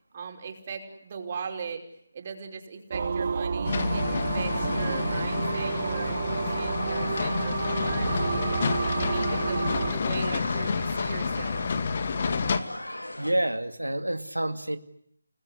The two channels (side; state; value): both; inverted; correlation -0.85